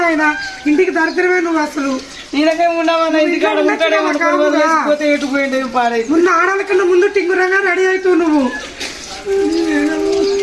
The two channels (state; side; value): identical; both; correlation 1.00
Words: ఆయన ఇంటికి దరిద్రమే నువ్వు అసలు. ఈయనకే ఉండవన్నా ఇంటికాడ ఉంటాడే ఎటుపోయింది పాడై. ముందు ఆడాల కన్నా ముందు టింగురంగా రెడీ అవుతావు నువ్వు.